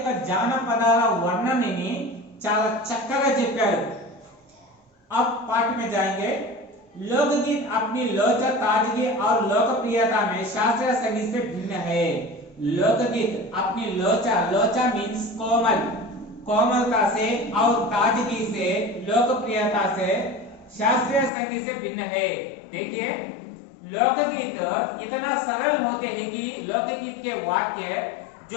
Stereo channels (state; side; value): drops out; right; at 21.3 s